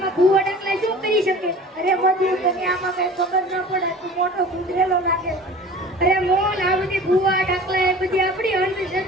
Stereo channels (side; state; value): both; normal; correlation 0.41